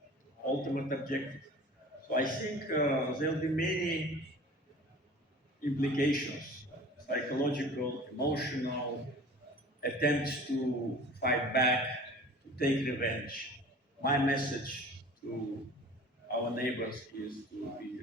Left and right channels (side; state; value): both; normal; correlation 0.42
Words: ultimate objective. So I think there will be many implications, psychological, emotional, attempts to fight back, to take revenge. My message to our neighbors is to be